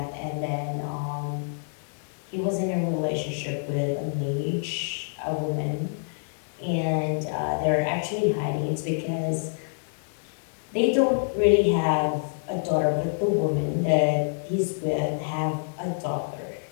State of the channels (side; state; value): right; silent; digital silence